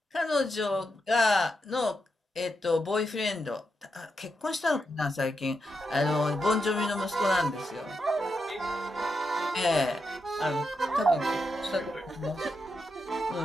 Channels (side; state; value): both; normal; correlation 0.85